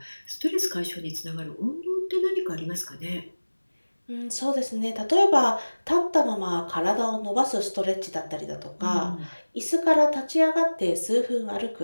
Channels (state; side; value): inverted; both; correlation -1.00